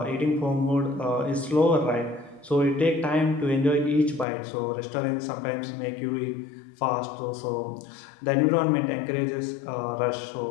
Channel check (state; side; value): drops out; right; at 4.2 s